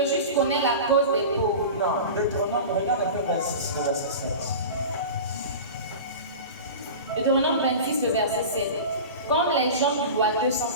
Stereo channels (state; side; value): inverted; both; correlation -0.31